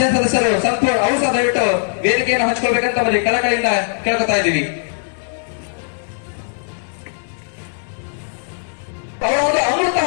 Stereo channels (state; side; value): silent; right; digital silence